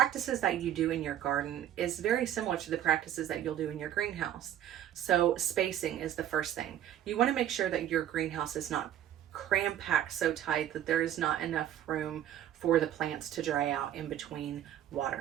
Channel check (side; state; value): left; quieter; 11.2 dB